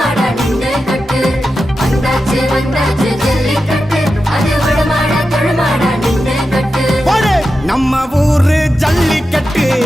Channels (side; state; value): both; normal; correlation 0.90